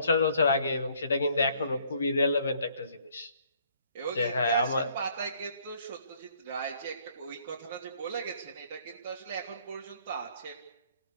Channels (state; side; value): inverted; both; correlation -0.63